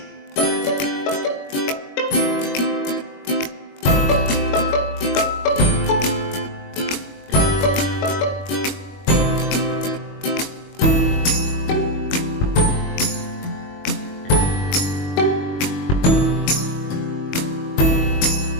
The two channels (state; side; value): late; right; 21 ms